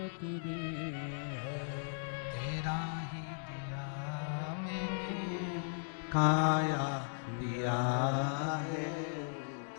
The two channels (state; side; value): silent; right; digital silence